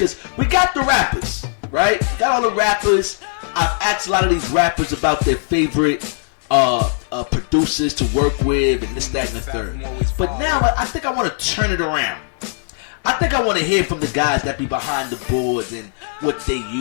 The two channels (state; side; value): silent; right; digital silence